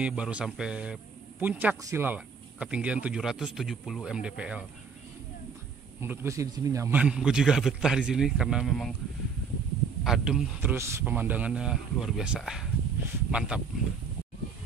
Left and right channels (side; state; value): left; quieter; 5.6 dB